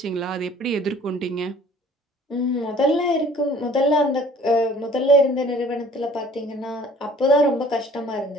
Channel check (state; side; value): normal; both; correlation 0.52